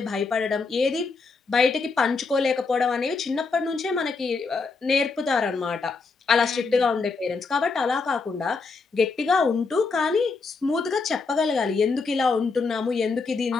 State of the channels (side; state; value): right; quieter; 4.4 dB